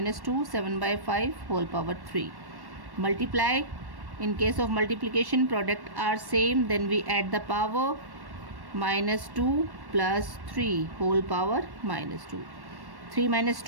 7 by 5 whole power 3. Multiply In case of multiplication, product are same, then we add the power. Minus 2 plus 3 whole power minus 2. 3 minus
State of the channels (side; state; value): left; late; 1.1 ms